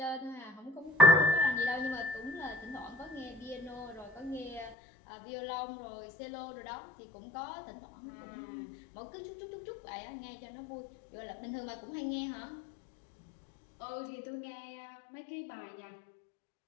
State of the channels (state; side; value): drops out; right; at 4.8 s